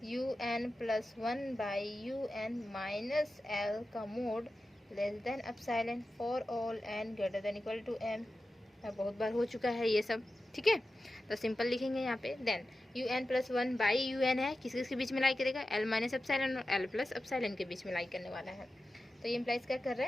un plus 1 by un minus L का mod less than epsilon for all n greater than equal to m। बहुत बार हो चुका है ये सब, ठीक है। तो सिंपल लिखेंगे यहाँ पे। Then un plus 1 by un है, किस किस के बीच में लाई करेगा, l माइनस एप्सिलॉन और l प्लस एप्सिलॉन के बीच में लाई करने वाला है। तो ये इम्प्लाइज क्या कर रहा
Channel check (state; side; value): normal; both; correlation 0.93